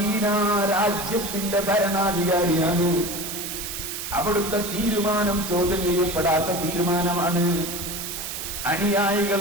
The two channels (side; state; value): right; noise; hiss, 6 dB below the sound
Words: രാജ്യത്തിന്റെ ഭരണാധികാരിയാണ്. അവിടുത്തെ തീരുമാനം ചോദ്യം ചെയ്യപ്പെടാത്ത തീരുമാനമാണ്. അനുയായികൾ